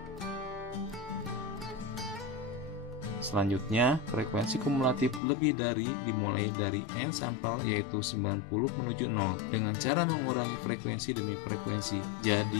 Selanjutnya, frekuensi kumulatif lebih dari dimulai dari n sampel yaitu 90 menuju 0 dengan cara mengurangi frekuensi demi frekuensi.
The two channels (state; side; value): drops out; right; at 5.2 s